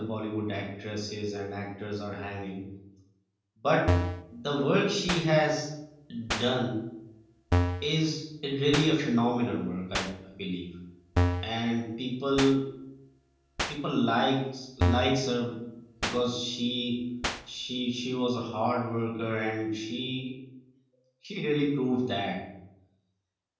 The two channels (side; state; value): both; identical; correlation 1.00